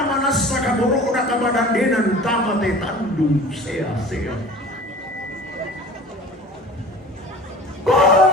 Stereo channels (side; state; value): both; normal; correlation 0.41